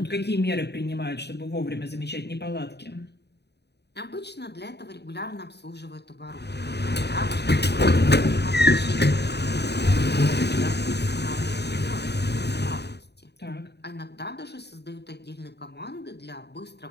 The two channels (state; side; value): late; right; 0.49 ms